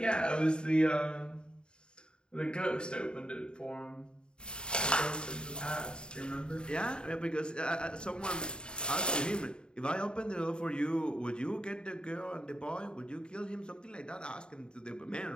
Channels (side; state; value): right; late; 0.050 ms